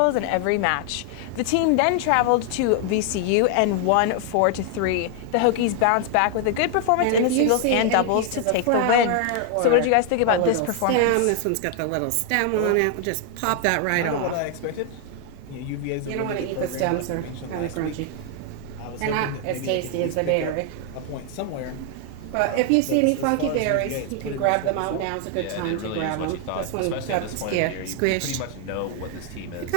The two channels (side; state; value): both; different; correlation 0.00